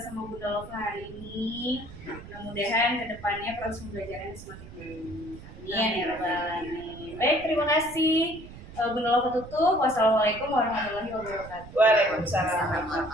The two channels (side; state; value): right; noise; rumble, 16 dB below the sound